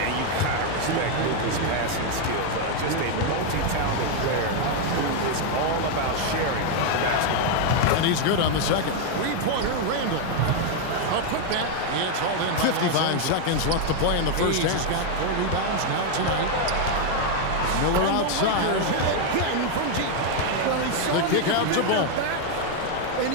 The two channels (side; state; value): both; different; correlation 0.01